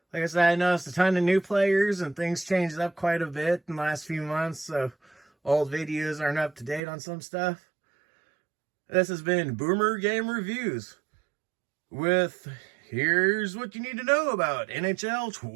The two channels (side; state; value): left; drops out; at 6.8 s